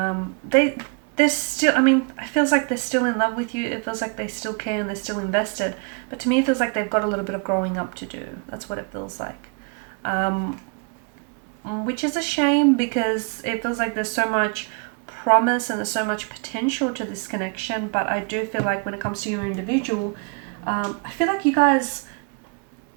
still, it feels like they're still in love with you. It feels like they still care and they're still invested, but to me it feels like they've got a little bit of growing up to do. That's what it feels like, which is a shame because it feels like there's so much promise and there's so much potential to this connection. But I do feel like when it comes to your individual, I feel like you guys,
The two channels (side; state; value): left; quieter; 36.2 dB